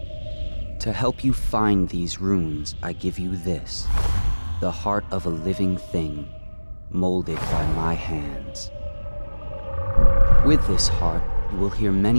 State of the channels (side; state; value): both; inverted; correlation -1.00